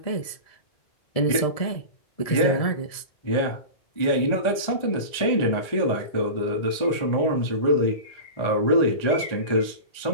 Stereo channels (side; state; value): right; late; 1.7 ms